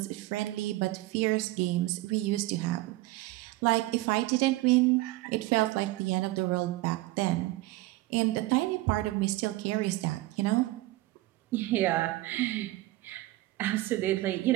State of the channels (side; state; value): left; quieter; 18.2 dB